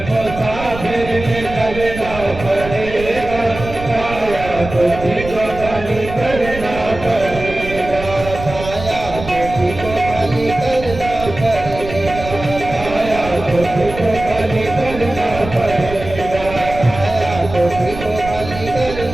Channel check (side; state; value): right; noise; rumble, 11 dB below the sound